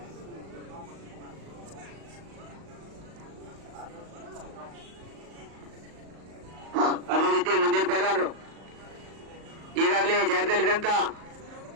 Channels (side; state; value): left; late; 37 ms